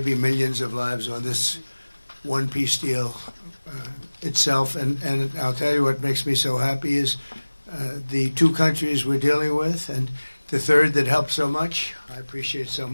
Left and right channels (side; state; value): both; inverted; correlation -1.00